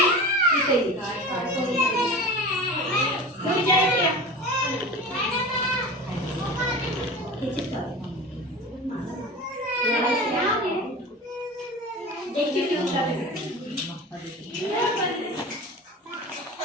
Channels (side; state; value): both; normal; correlation 0.33